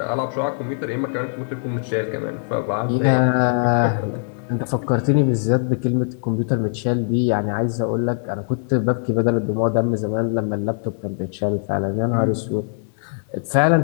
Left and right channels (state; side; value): silent; right; digital silence